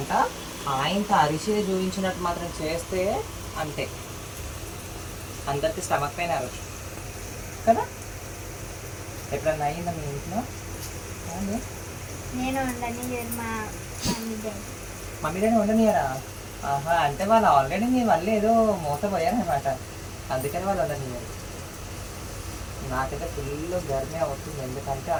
ఆయనతో అరిచిని చూపించినట్టు మాత్రం చేస్తే అంతే, అందరికి స్టమక్ పైన అరచు కదా. ఎప్పుడన్నా అయిందా మీ ఇంట్లో? నేను వండని మా మమ్మీ డాడీ వండనియరా? ఆహా, అంటే వాళ్ళు ఆల్రెడీ మీ వల్ల ఏదో మోసపోయారనమాట, అందుకని వాళ్ళు వండనియరు. నాకైతే ఫుల్ గర్మే అవుతుంది, ఎందుకంటే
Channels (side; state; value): both; identical; correlation 1.00